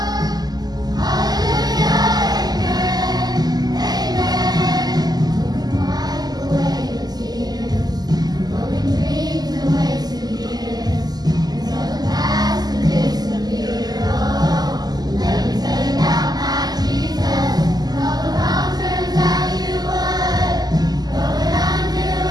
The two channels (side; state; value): left; late; 0.20 ms